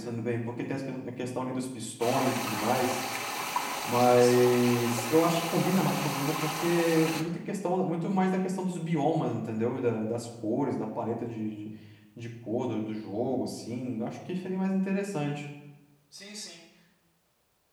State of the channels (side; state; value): both; identical; correlation 1.00